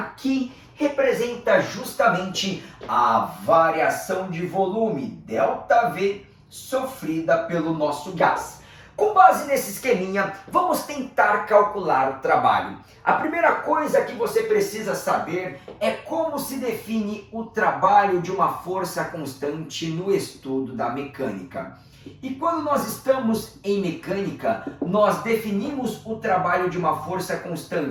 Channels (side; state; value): both; identical; correlation 1.00